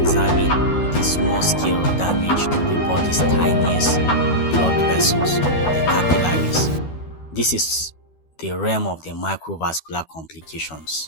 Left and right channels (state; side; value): late; right; 12 ms